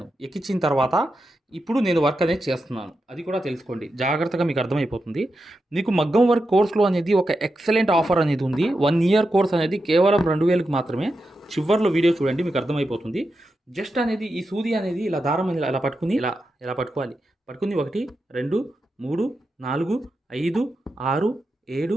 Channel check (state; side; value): normal; both; correlation 0.88